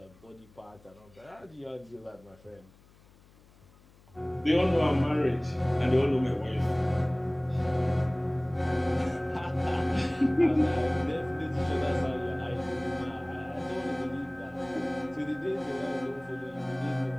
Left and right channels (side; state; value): left; noise; hum, 27 dB below the sound